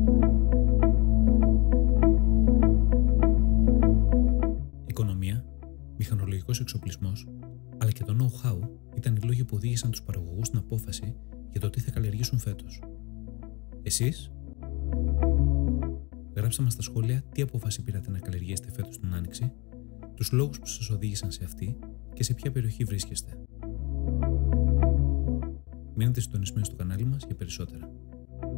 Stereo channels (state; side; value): quieter; right; 26.4 dB